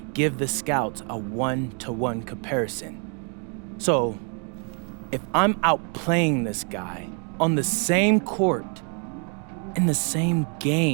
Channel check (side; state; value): left; quieter; 38.6 dB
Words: give the scouts a one-to-one comparison. So, if I'm outplaying this guy on the same court, in the same